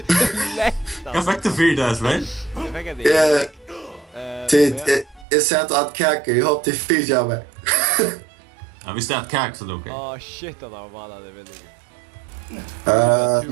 Jag fick det 4 Espen. Jag fick det. Jag sätter att kaka, jag hoppas det fyra mig. Ja, visst är det kak så okej. Åh shit, han har vallat det väldigt.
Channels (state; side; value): drops out; left; at 5.2 s